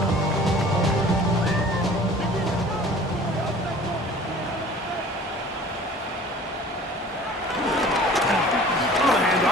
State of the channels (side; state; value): both; normal; correlation 0.46